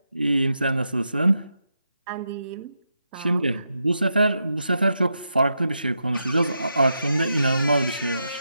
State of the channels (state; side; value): inverted; both; correlation -0.85